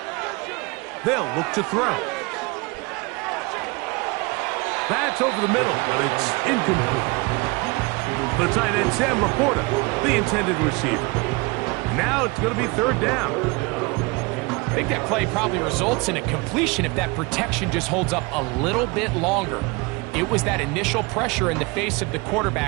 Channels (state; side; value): quieter; left; 26.6 dB